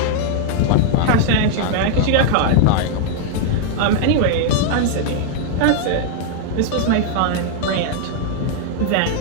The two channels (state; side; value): different; both; correlation 0.00